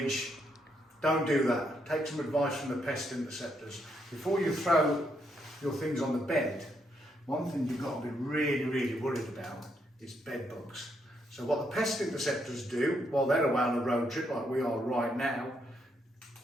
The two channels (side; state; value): both; normal; correlation 0.76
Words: Don't do that. Take some advice from the pest interceptors. Before you throw your things on the bed, one thing you've got to be really worried about is bed bugs. So what the pest interceptors do, while they're away on a road trip like we are right now,